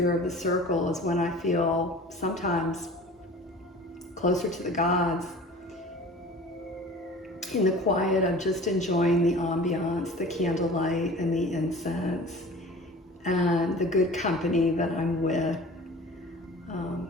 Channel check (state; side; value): normal; both; correlation 0.42